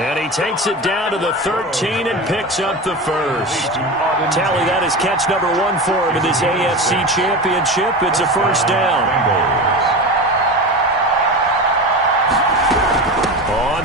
he takes it down to the 13 and picks up the first. Tally, that is catch number 1 for him in this AFC Championship. It's a first down. On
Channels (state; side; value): normal; both; correlation 0.26